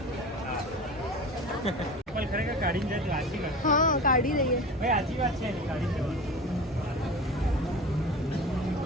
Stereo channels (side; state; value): both; normal; correlation 0.33